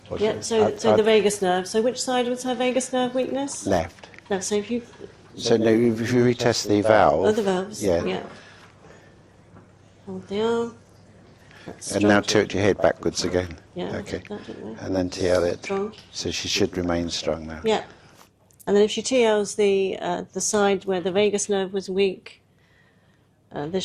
Yeah, so the vagus nerve. So which side was her vagus nerve weakness? Left. Left. So if you... So no, if you retest the valve. Oh, the valves. Yeah. Hold the arm. That's And strong. now tilt your head backwards again. Yeah, Okay. that, didn't we? And then TL it. Strong. So she should remain strong now. Yeah. And then if she TLs the side where the vagus nerve was weak, this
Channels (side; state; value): both; identical; correlation 1.00